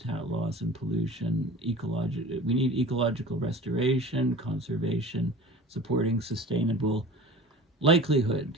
loss, and pollution. We need ecological restoration, conservation, supporting sustainable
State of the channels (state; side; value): normal; both; correlation 0.39